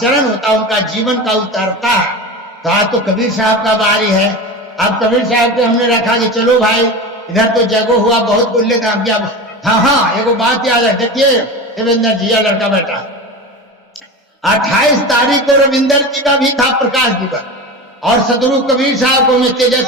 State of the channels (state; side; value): normal; both; correlation 0.27